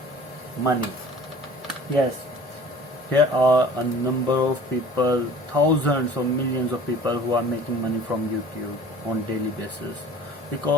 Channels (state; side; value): normal; both; correlation 0.46